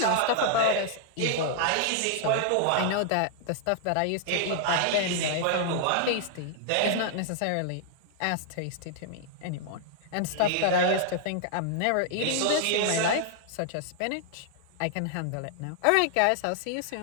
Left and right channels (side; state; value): both; different; correlation -0.01